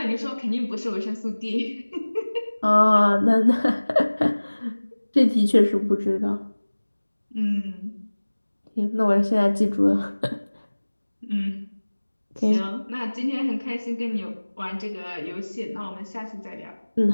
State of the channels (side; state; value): both; inverted; correlation -1.00